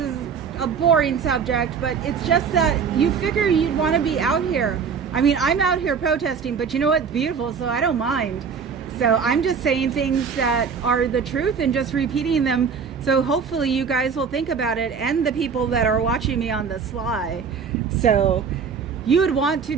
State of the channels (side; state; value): left; quieter; 6.2 dB